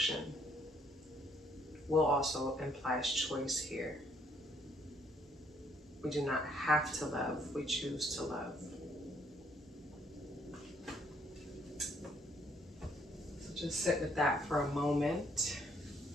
Will also implies choice here. We do not have to love, we choose to love. So just sit with that for a moment.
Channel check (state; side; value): normal; both; correlation 0.67